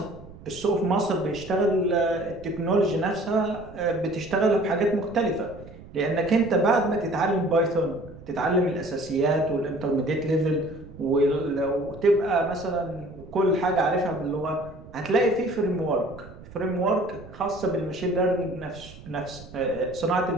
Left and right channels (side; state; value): right; noise; rumble, 18 dB below the sound